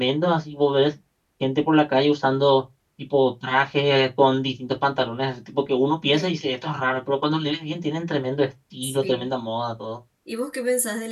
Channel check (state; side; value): identical; both; correlation 1.00